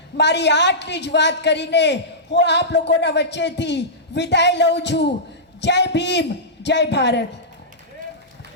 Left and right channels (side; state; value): both; normal; correlation -0.16